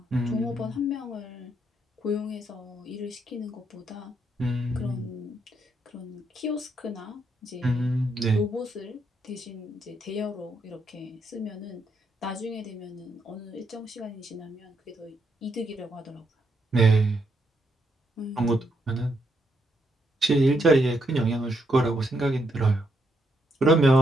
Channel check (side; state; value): both; normal; correlation 0.77